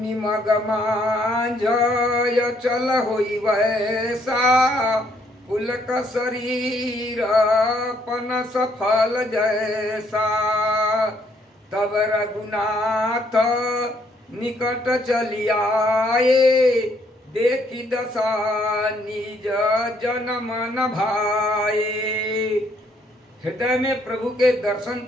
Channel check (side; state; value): both; normal; correlation 0.69